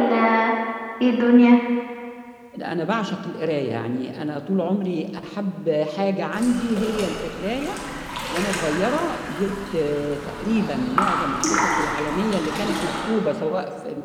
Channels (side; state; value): both; identical; correlation 1.00